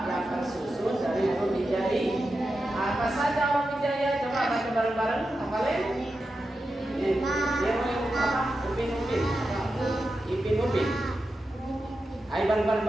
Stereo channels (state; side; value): normal; both; correlation 0.90